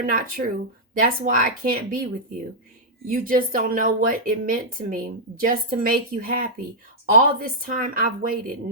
not true. That's why I can't be with you. You just don't know what it meant to me just to make you happy. All this time I've waited.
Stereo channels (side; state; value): both; normal; correlation -0.07